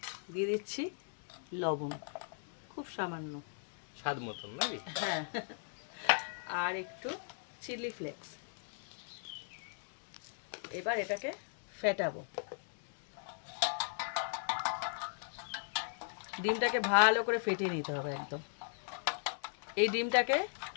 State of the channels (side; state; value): right; silent; digital silence